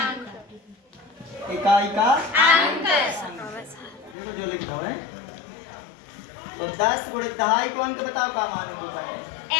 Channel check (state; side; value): drops out; right; at 4.2 s